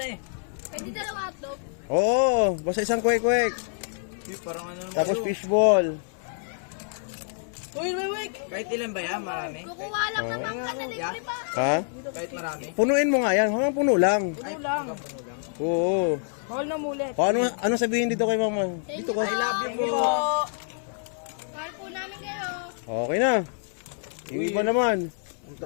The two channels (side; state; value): right; silent; 60 dB below the other